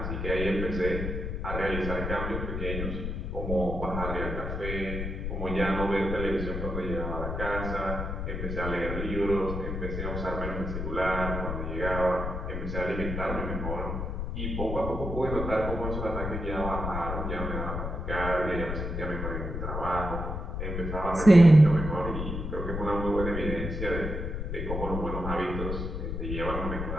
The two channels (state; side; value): noise; left; rumble, 3 dB below the sound